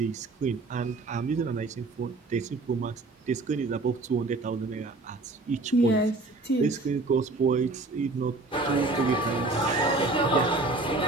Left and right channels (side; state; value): left; quieter; 3.3 dB